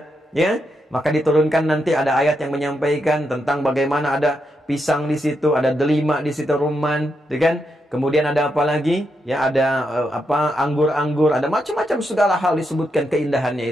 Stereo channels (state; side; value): normal; both; correlation 0.82